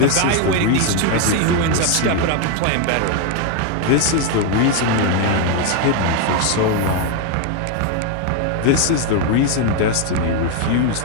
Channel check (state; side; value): different; both; correlation 0.01